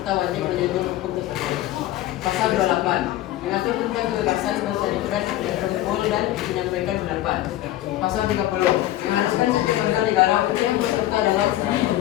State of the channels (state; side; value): quieter; right; 14.5 dB